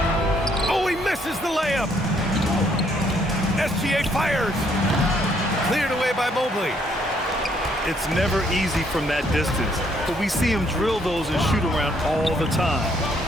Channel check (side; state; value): both; normal; correlation 0.68